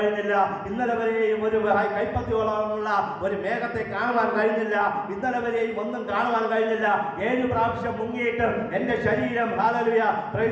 ഇന്നലെ വരെയും ഒരു കൈപ്പത്തിയോളമുള്ള ഒരു മേഘത്തെ കാണുവാൻ കഴിഞ്ഞില്ല. ഇന്നലെ വരെയും ഒന്നും കാണുവാൻ കഴിഞ്ഞില്ല. 7 പ്രാവശ്യം മുങ്ങിയിട്ടും എൻ്റെ ശരീരം ഹല്ലേലൂയ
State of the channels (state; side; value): identical; both; correlation 1.00